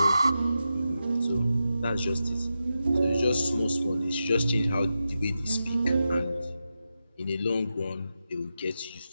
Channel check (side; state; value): both; inverted; correlation -0.90